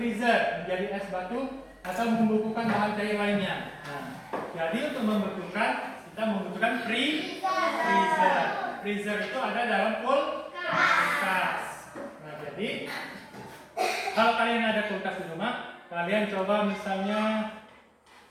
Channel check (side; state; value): both; identical; correlation 1.00